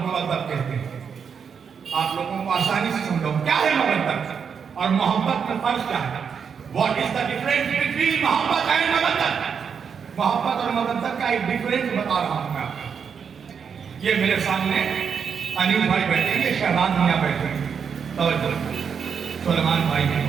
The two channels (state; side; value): quieter; left; 6.7 dB